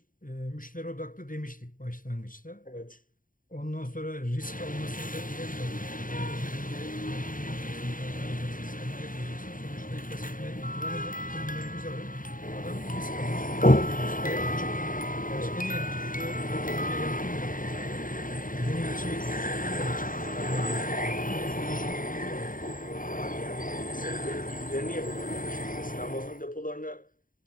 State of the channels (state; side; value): late; right; 0.39 ms